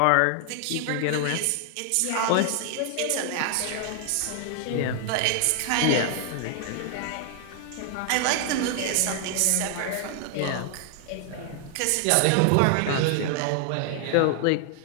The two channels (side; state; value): both; different; correlation 0.00